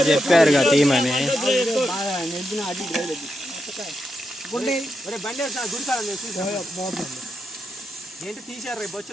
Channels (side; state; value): both; normal; correlation 0.85